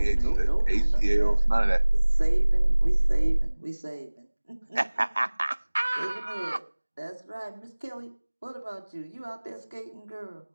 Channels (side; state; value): both; inverted; correlation -1.00